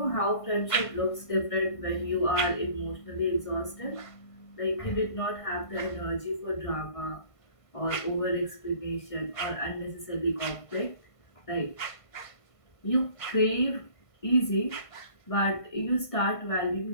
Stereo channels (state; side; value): late; right; 1.5 ms